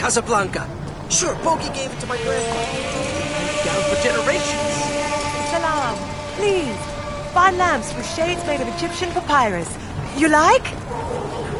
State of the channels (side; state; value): both; identical; correlation 1.00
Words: Sure, Bogey gave it to my grandfather. Down for generations. Salam. Please. Fine lamps with shades made of Egyptian papyrus. You like?